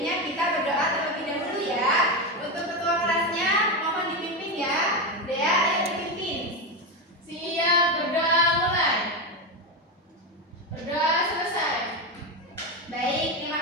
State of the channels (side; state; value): both; normal; correlation 0.13